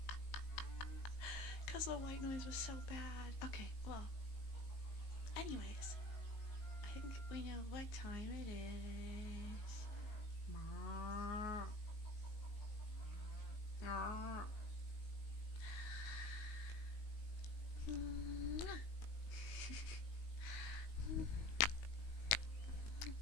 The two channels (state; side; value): late; right; 19 ms